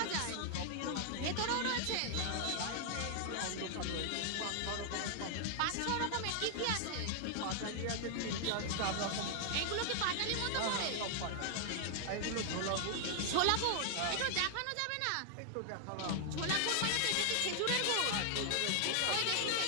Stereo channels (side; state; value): both; different; correlation -0.01